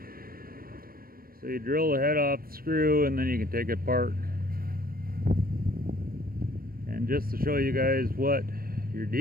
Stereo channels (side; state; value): left; late; 0.43 ms